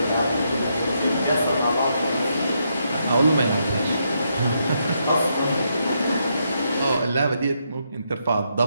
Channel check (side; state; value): both; inverted; correlation -0.79